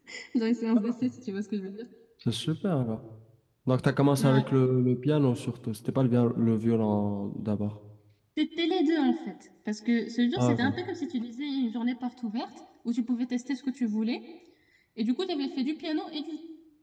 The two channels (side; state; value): both; identical; correlation 1.00